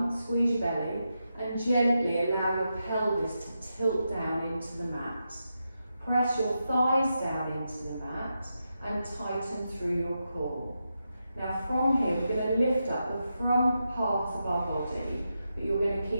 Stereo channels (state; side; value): inverted; both; correlation -0.87